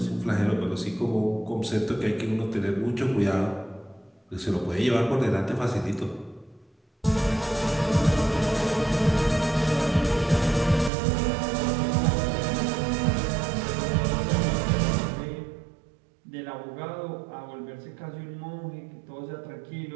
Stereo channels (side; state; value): left; drops out; at 10.9 s